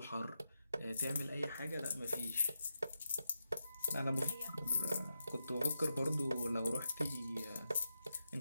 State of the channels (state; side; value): inverted; both; correlation -0.88